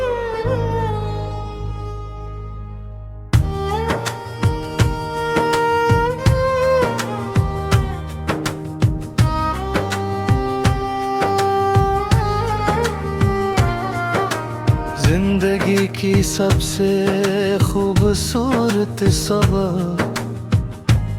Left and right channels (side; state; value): both; identical; correlation 1.00